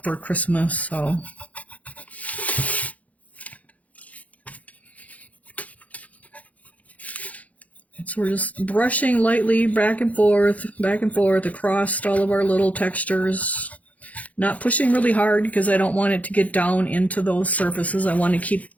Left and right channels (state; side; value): late; right; 0.070 ms